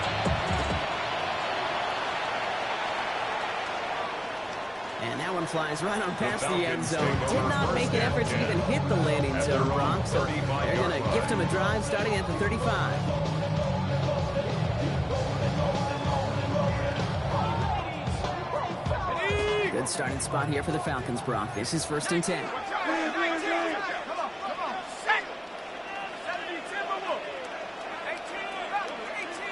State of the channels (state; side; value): identical; both; correlation 1.00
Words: And that one flies right on past the end zone. Did not make an effort to even hit the landing zone, Brock. So they're going to gift him a drive starting at the 35. Good starting spot here for the Falcons, Brock. This is 1st and 10.